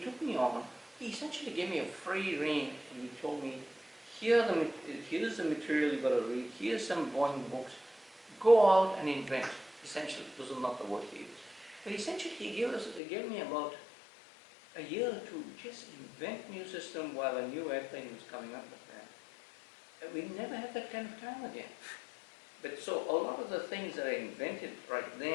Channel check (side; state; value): right; drops out; at 13.0 s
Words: me on, he essentially gave me a free rein and he told me, here's the material you've got to read, here's some Boeing books, go out and invent. Essentially, those are not the words he used. But essentially he gave me about a year or two just invent new system while a new airplane was coming up with that. And we never had that kind of time again. But so a lot of the things that I invented right